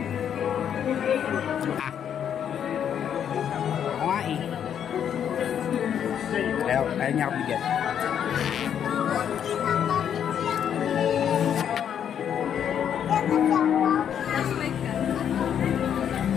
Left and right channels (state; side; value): quieter; right; 8.9 dB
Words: Ayaw niya ako bigyan.